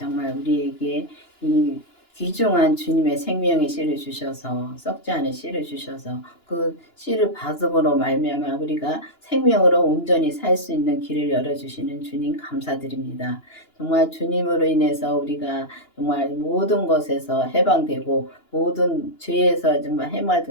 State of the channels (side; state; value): right; late; 2.9 ms